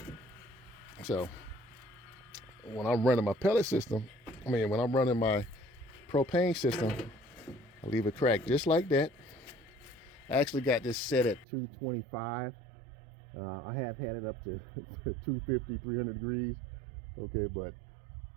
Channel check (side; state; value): left; drops out; at 11.5 s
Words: So, when I'm running my pellet system, when I'm running my propane system, I leave it cracked just like that. I actually got this set at 225. I have had it up to 250, 300 degrees. Okay, but